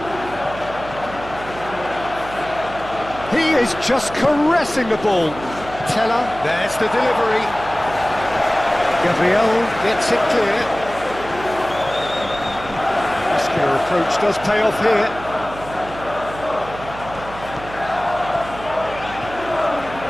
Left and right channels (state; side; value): noise; right; hum, 14 dB below the sound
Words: He is just caressing the ball. Teller, there's the delivery. Gabriel gets it clear. Muscular approach does pay off here.